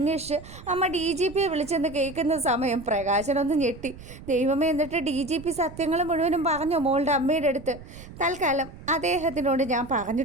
അമ്മ DGPയെ വിളിച്ചെന്ന് കേൾക്കുന്ന സമയം പ്രകാശനൊന്ന് ഞെട്ടി. ദൈവമേ, എന്നിട്ട് DGP സത്യങ്ങൾ മുഴുവനും പറഞ്ഞോ മോളുടെ അമ്മയുടെ അടുത്ത്? തൽക്കാലം അദ്ദേഹത്തിനോട് ഞാൻ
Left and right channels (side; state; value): right; noise; rumble, 16 dB below the sound